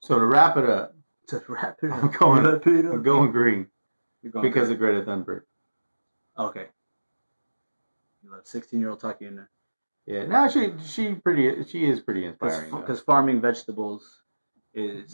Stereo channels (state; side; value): inverted; both; correlation -1.00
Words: to wrap it up, I'm going green because of Greta Thunberg. Okay. You let a 16-year-old talk you into. Yeah, no, she is pretty inspiring. Because farming vegetables